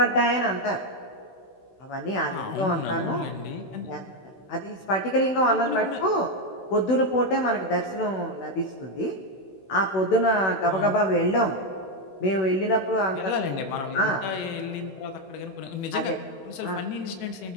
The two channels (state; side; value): late; right; 16 ms